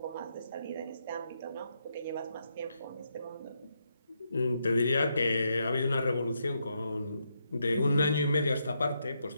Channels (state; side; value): inverted; both; correlation -0.80